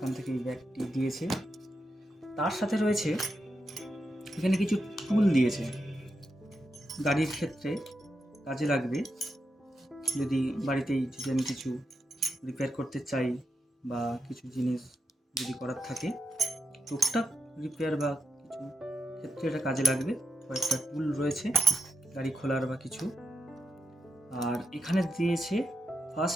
থেকে এই ব্যাগটি দিয়েছে। তার সাথে রয়েছে এখানে কিছু টুল দিয়েছে, গাড়ির ক্ষেত্রে কাজে লাগবে। যদি বাড়িতেই যদি আমি কিছু রিপেয়ার করতে চাই বা কিছু জিনিস যদি করার থাকে, টুকটাক রিপেয়ার বা কিছু ক্ষেত্রে এটা কাজে লাগবে। কয়েকটা টুল রয়েছে গাড়ি খোলার বা কিছু। আর এখানে দিয়েছে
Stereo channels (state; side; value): normal; both; correlation 0.84